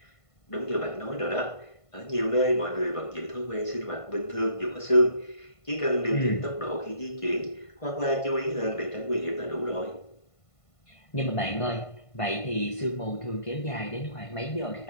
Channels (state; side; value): late; right; 1.5 ms